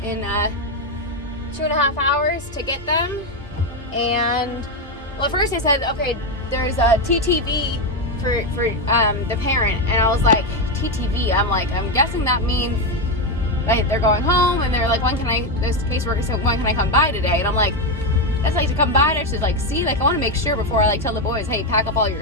in 2.5 hours to get them. And well, at first they said, okay, there's a TTV for the parent, and I was like, TTV? I'm guessing that means they're going home, and they're like, this caseworker said, when can I come by today? And I'm like, that's to come by to see, I want to make sure before I tell the boys, hey, pack up all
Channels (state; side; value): normal; both; correlation 0.08